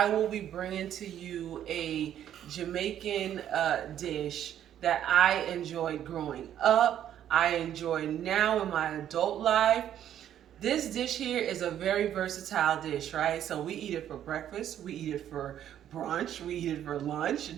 will be bringing to you a Jamaican dish that I enjoyed growing up. I enjoy now in my adult life. This dish here is a very versatile dish, right? So we eat it for breakfast, we eat it for brunch, we eat it for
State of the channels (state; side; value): quieter; left; 10.6 dB